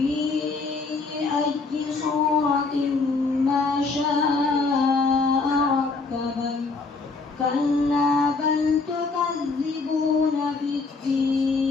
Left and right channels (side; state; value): right; quieter; 4.1 dB